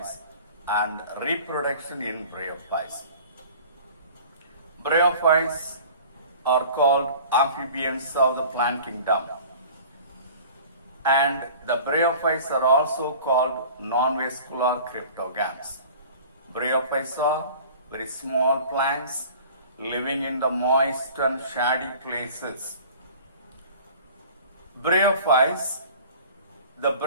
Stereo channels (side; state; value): both; inverted; correlation -0.44